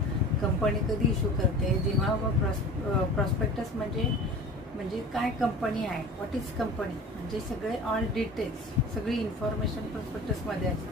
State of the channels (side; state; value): both; normal; correlation 0.39